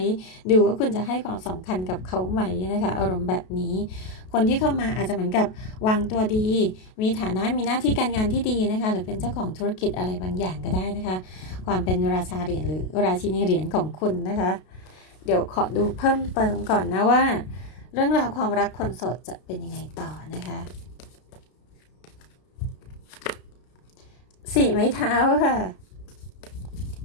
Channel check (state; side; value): late; right; 32 ms